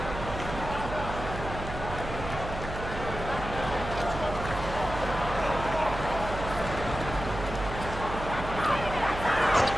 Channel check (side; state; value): right; noise; hum, 7 dB below the sound